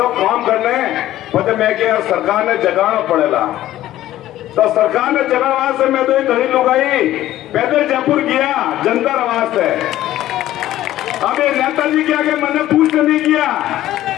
काम करने। पता मैं क्या सरकार ने जगाना पड़ेगा, तो सरकार ने जगाना से मैं तो घड़ी लुगाई पैदल जयपुर गया जनता आवाज से। अब ये नेताजी के आगे मैंने पूछ नहीं किया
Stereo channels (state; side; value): quieter; right; 14.0 dB